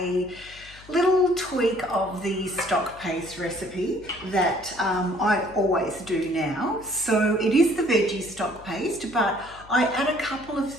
little tweak of the stock paste recipe that I always do now. So it is the veggie stock paste, but I add a couple of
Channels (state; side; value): noise; left; hum, 22 dB below the sound